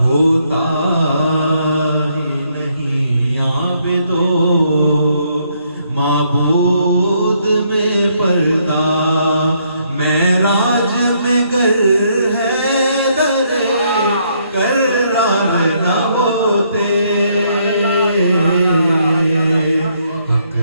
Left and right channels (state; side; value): inverted; both; correlation -0.71